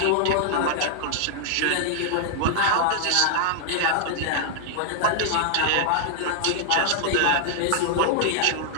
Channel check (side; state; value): both; different; correlation -0.01